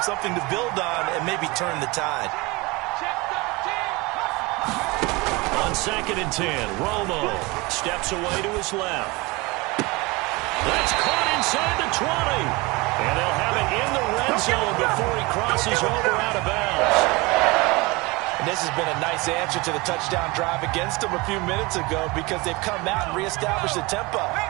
something to build on and maybe turn the tide. On 2nd and 10, Romo steps away to his left. That's caught inside the 20. And they'll have it in the red zone before he crosses over out of bounds. And this has been a nice answer to the touchdown drive against them a few minutes ago because they've come out and reestablished the tempo.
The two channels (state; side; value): quieter; left; 24.3 dB